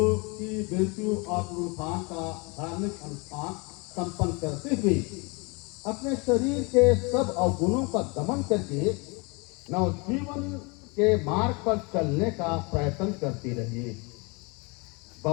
की मृत्यु और पुनरुत्थान का धार्मिक अनुष्ठान संपन्न करते हुए अपने शरीर के सब अवगुणों का दमन करके नवजीवन के मार्ग पर चलने का प्रयत्न करते रहिए।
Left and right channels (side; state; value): right; quieter; 29.4 dB